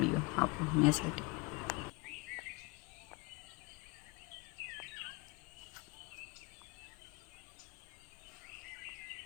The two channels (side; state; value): right; quieter; 26.6 dB